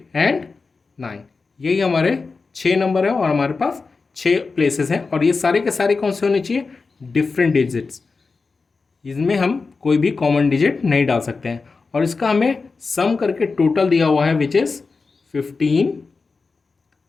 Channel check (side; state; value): right; quieter; 4.3 dB